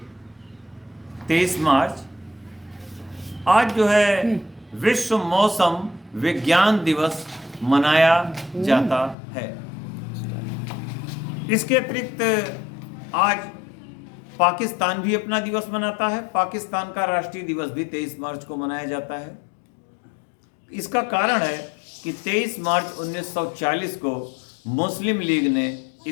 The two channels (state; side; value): drops out; right; at 9.2 s